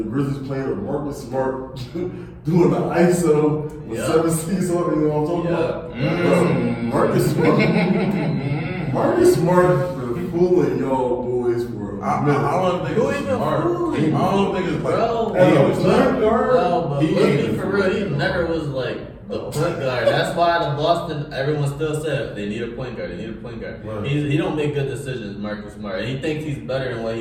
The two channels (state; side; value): identical; both; correlation 1.00